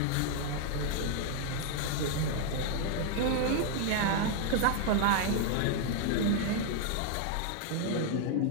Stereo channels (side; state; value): both; different; correlation 0.00